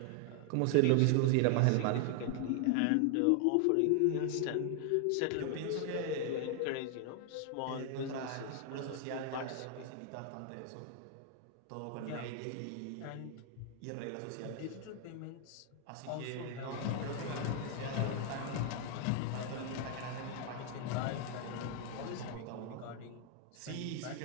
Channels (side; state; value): both; different; correlation 0.00